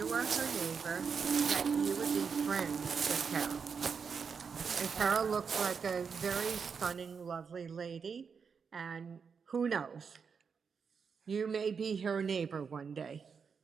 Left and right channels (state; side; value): quieter; left; 6.0 dB